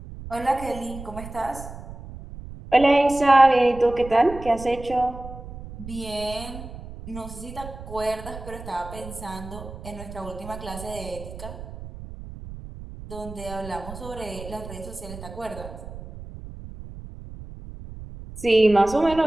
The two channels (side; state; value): right; noise; rumble, 13 dB below the sound